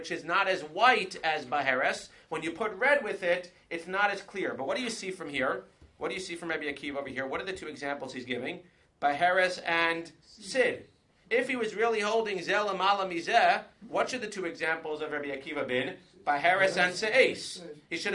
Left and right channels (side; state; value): both; identical; correlation 1.00